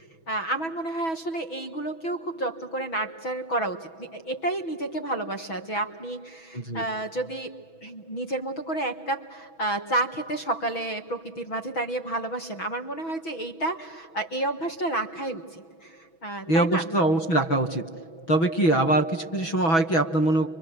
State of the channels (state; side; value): late; right; 6.1 ms